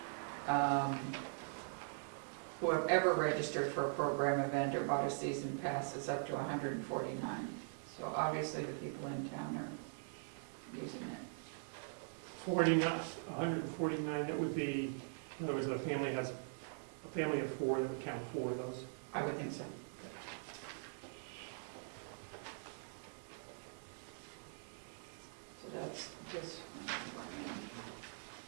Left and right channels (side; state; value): left; silent; digital silence